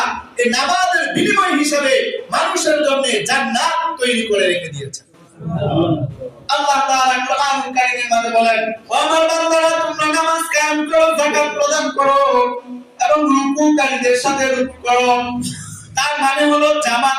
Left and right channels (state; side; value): identical; both; correlation 1.00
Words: এই নামাজের বিনিময় হিসেবে মানুষের জন্য জান্নাত তৈরি করে রেখে দিয়েছেন। আল্লাহ তাআলা কোরআনুল কারীমের মধ্যে বলেন, ও আমার বান্দারা, তোমরা নামাজ কায়েম করো, যাকাত প্রদান করো এবং রুকুকারীদের সাথে রুকু করো। তার মানে হলো